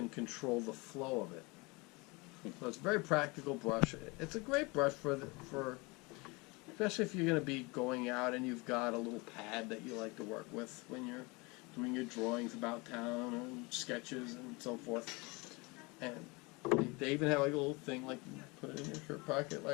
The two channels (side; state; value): right; quieter; 26.5 dB